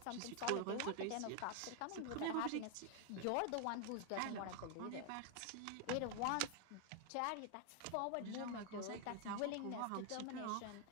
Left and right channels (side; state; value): both; different; correlation 0.00